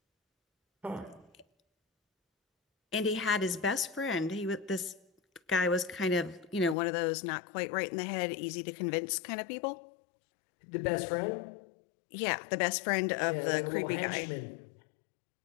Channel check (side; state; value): right; drops out; at 6.8 s